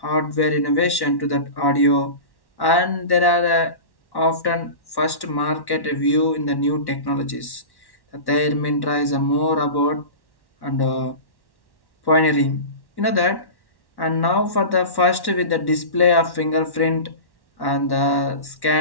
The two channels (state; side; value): late; right; 1.1 ms